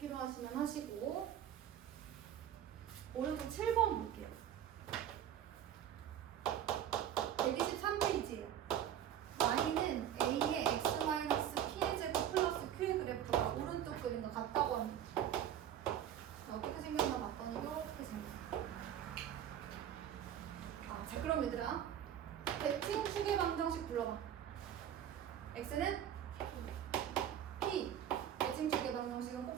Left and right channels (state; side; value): quieter; left; 10.3 dB